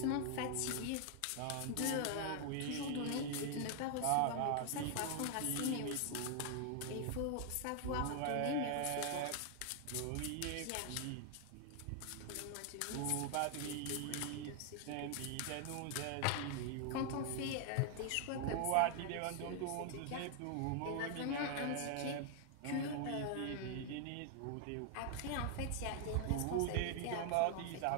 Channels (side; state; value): both; different; correlation 0.00